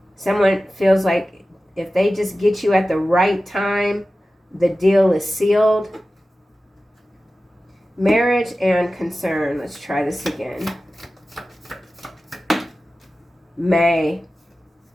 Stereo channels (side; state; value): both; normal; correlation 0.95